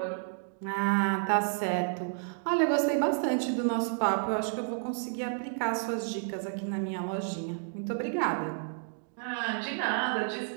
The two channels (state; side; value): silent; left; digital silence